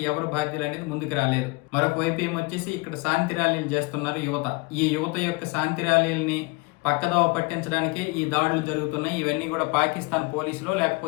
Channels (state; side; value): quieter; right; 27.0 dB